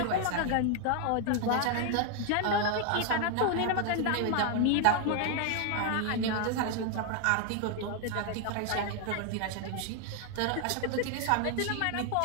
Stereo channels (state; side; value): different; both; correlation 0.00